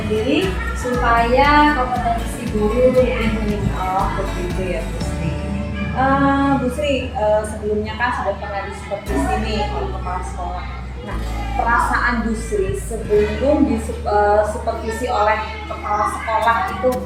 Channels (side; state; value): both; identical; correlation 1.00